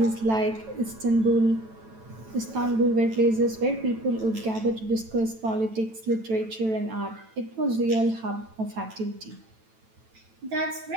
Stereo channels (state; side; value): late; left; 9.1 ms